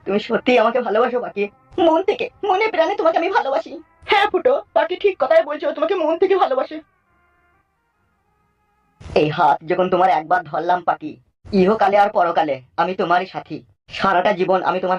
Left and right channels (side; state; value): both; identical; correlation 1.00